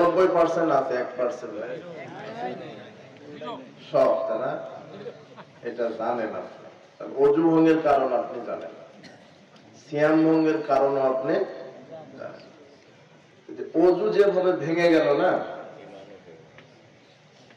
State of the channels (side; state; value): both; identical; correlation 1.00